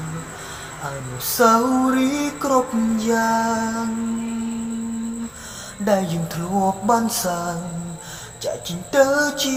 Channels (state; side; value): identical; both; correlation 1.00